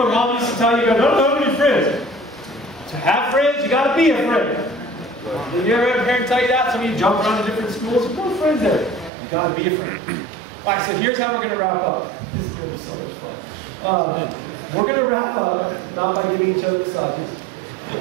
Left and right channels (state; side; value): drops out; left; at 9.1 s